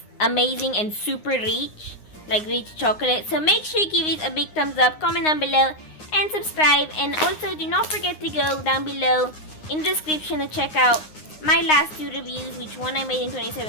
amazing and super rich, like rich chocolate. So make sure you give it a big thumbs up, comment down below, and subscribe. And also do not forget to go down below in the description to check out my last 2 reviews, which one I made in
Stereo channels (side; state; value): right; late; 9.7 ms